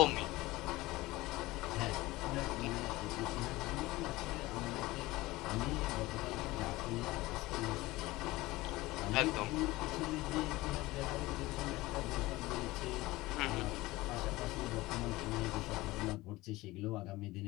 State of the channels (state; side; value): quieter; right; 19.5 dB